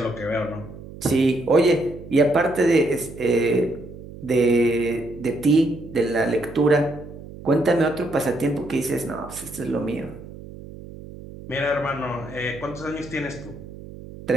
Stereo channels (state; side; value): noise; right; hum, 15 dB below the sound